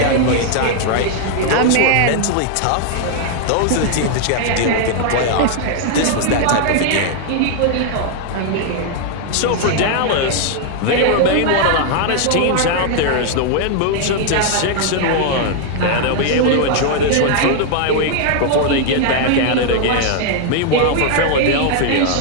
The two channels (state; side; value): different; both; correlation 0.00